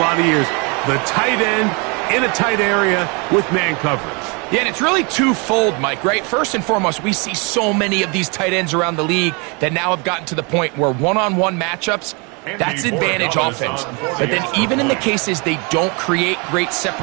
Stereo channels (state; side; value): quieter; left; 31.3 dB